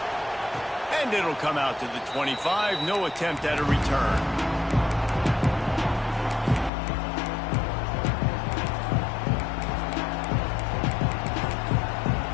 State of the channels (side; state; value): right; drops out; at 6.7 s